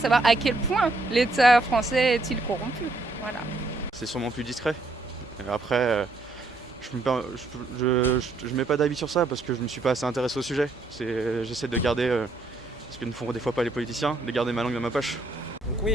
à quel point l'État français est-il corrompu. Voilà. C'est sûrement plus discret. Et après, je mets pas d'avis sur ça parce que je me suis pas assez intéressé au sujet. J'essaie de garder, ce que ne font des fois pas les politiciens, de garder ma langue dans ma poche. Donc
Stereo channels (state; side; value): quieter; left; 3.1 dB